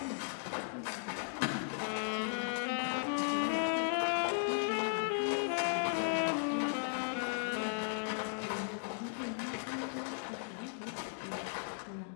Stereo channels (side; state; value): right; silent; digital silence